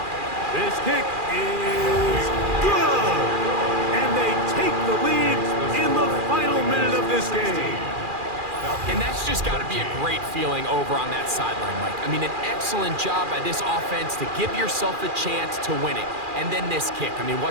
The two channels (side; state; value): left; late; 2.4 ms